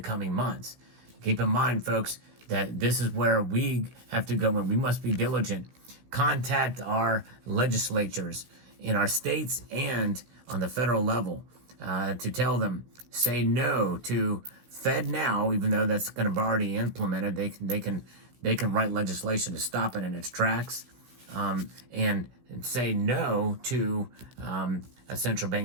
coming months. Keep in mind, folks, that this is where we have to go, and we must be diligent. Contact our legislatures in our states and on the federal level to tell them, say no to FedNow, even though that's going to be already implemented. They can write legislation to stop it in its tracks, and say no to a central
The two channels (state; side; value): late; left; 16 ms